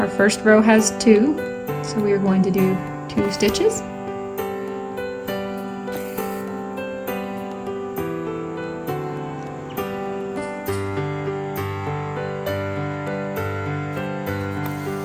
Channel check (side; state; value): both; identical; correlation 1.00